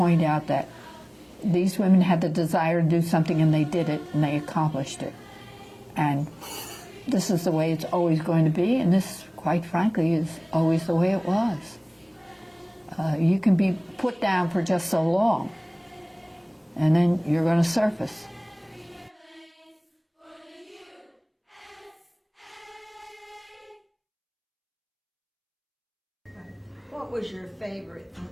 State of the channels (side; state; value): both; identical; correlation 1.00